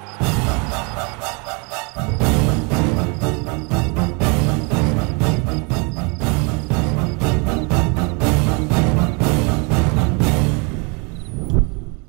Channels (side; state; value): left; quieter; 32.1 dB